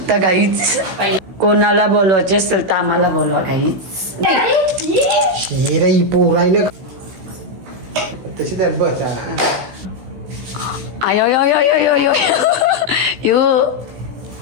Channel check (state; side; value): late; left; 16 ms